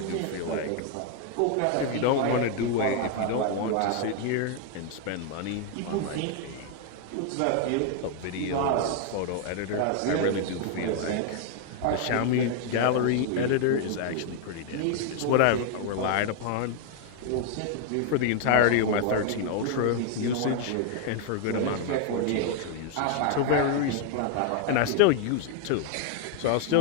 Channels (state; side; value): different; both; correlation 0.00